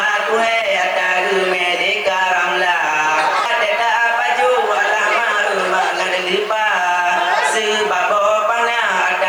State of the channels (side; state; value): left; noise; hiss, 29 dB below the sound